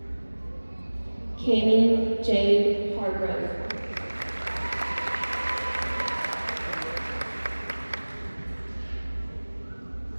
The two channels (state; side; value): inverted; both; correlation -1.00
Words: Cammie Jade Hargrove.